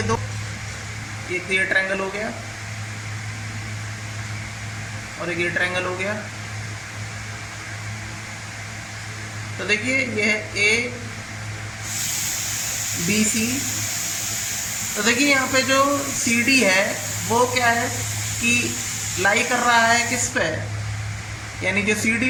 दो। एक ये ट्रायंगल हो गया और एक ये ट्रायंगल हो गया। तो देखिए ये है ए बी सी। तो देखिए यहाँ पे जो सी डी है वो क्या है कि लाई कर रहा है किस पे, यानी जो सी डी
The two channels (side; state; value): both; identical; correlation 1.00